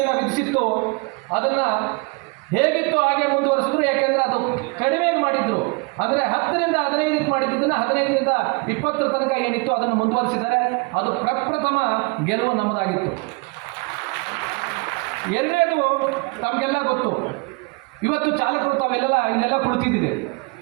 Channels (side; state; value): left; quieter; 29.8 dB